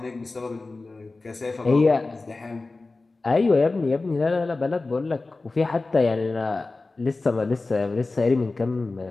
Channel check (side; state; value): right; quieter; 3.5 dB